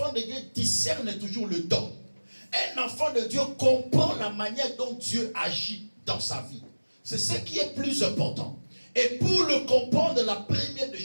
de Dieu discerne toujours le don. Un enfant de Dieu comprend la manière dont Dieu agit dans sa vie. C'est ce qui est plus important. Et pour le comprendre, la première des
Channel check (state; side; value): inverted; both; correlation -1.00